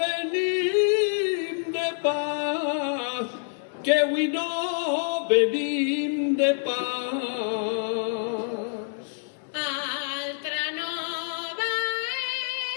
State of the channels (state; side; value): silent; right; digital silence